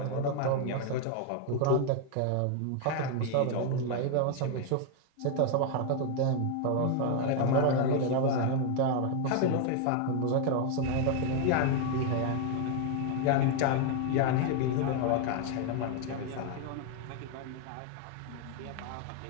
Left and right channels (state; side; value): different; both; correlation 0.01